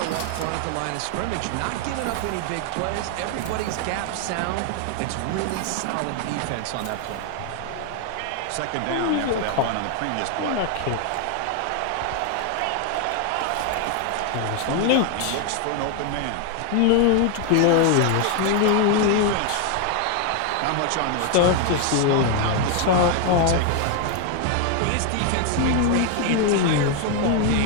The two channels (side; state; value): both; different; correlation 0.01